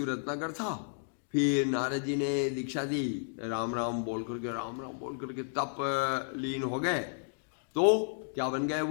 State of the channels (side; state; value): right; silent; digital silence